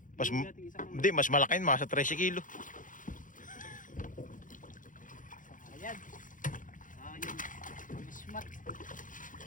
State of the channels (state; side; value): late; right; 0.38 ms